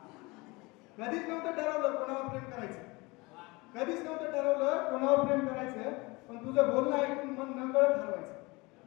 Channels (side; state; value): right; quieter; 24.5 dB